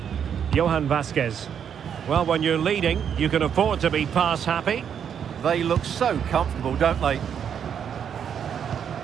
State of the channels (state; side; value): quieter; left; 8.1 dB